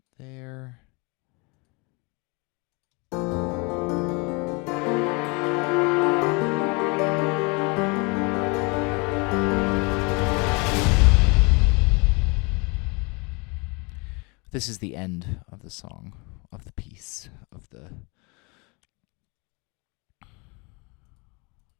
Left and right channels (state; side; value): quieter; right; 29.7 dB